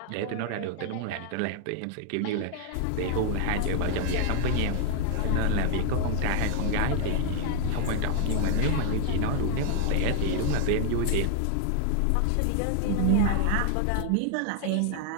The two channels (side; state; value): both; different; correlation 0.00